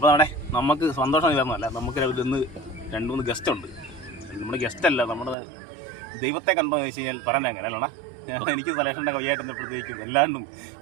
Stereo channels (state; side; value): drops out; left; at 5.4 s